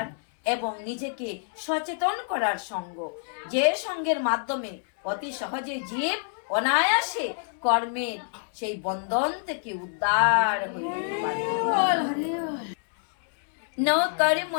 এবং নিজেকে সচেতন করার সঙ্গ, যে সঙ্গের মাধ্যমে অতি সহজে জীব অনায়াসে কর্মের সেই বন্ধন থেকে উদ্ধার হইতে পারে। ন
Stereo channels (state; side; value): silent; right; 60 dB below the other